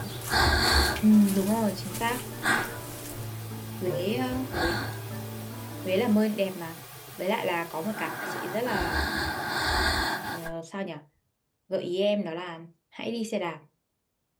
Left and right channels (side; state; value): both; identical; correlation 1.00